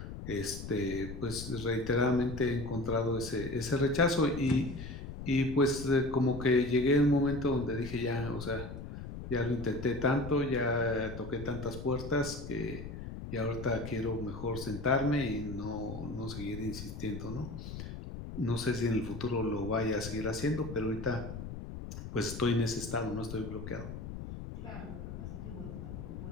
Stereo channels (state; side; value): noise; left; rumble, 9 dB below the sound